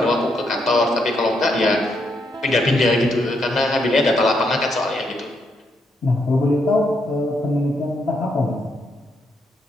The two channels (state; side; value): normal; both; correlation 0.77